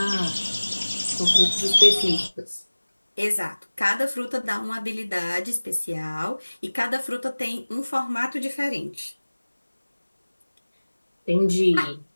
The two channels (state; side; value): inverted; both; correlation -1.00